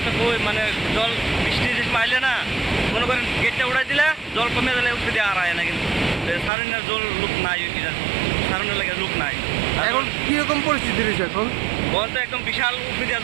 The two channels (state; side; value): drops out; left; at 6.5 s